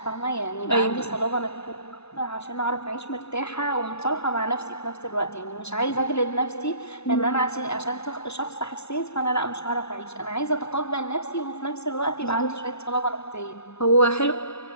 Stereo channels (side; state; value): right; late; 0.80 ms